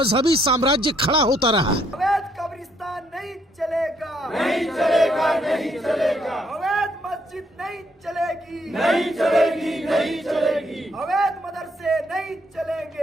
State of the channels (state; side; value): normal; both; correlation 0.71